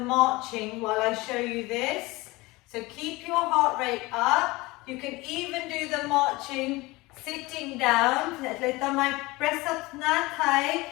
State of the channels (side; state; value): right; quieter; 21.9 dB